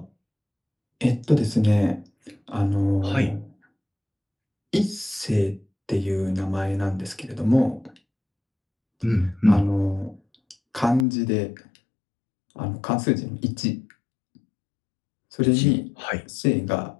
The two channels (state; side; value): drops out; right; at 11.1 s